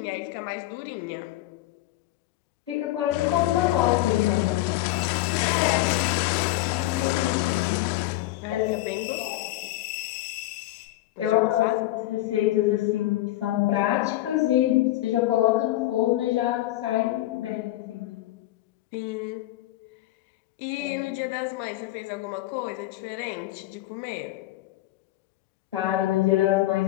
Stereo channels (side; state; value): right; quieter; 16.1 dB